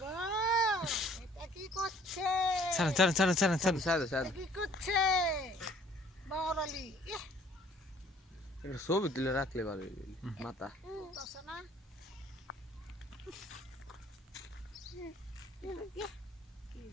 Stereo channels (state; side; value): normal; both; correlation 0.57